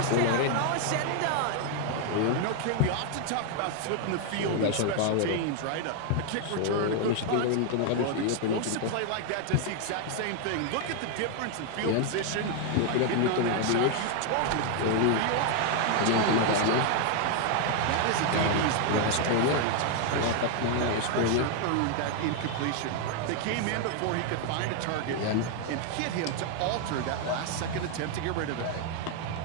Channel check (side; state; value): both; different; correlation 0.00